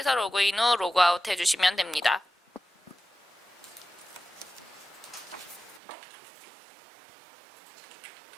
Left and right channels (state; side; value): drops out; left; at 5.8 s